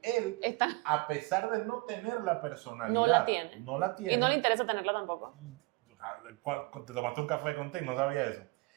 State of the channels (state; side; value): quieter; left; 25.5 dB